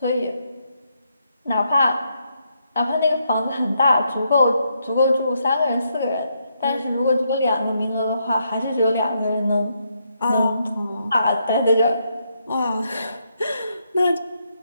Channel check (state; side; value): inverted; both; correlation -0.78